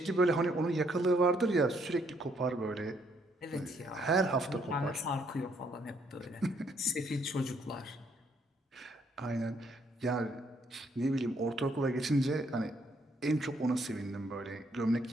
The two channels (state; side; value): normal; both; correlation 0.70